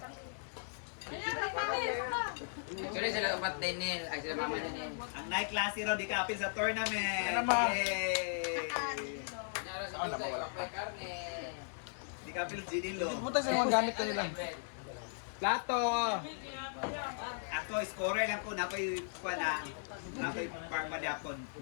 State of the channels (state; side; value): silent; right; 53 dB below the other